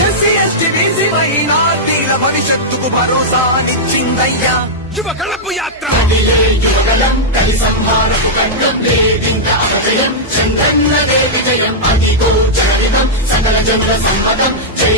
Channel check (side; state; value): both; normal; correlation -0.09